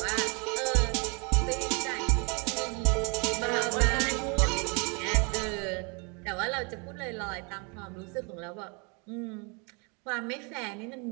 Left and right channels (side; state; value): left; quieter; 32.8 dB